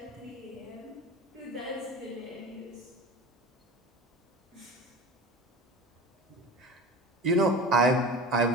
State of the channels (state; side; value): normal; both; correlation 0.33